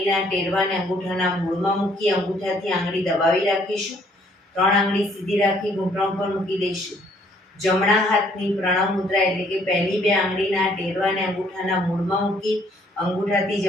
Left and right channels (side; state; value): both; normal; correlation 0.64